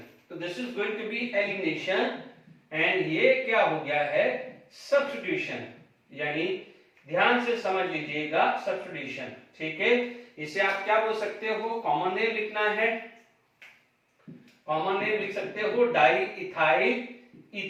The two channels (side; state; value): both; identical; correlation 1.00